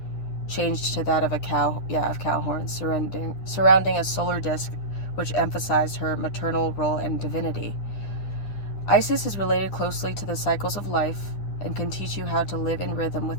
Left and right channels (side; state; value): right; late; 9.7 ms